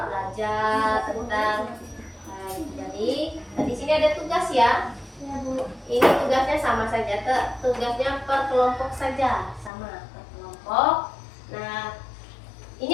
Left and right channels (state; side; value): drops out; right; at 9.7 s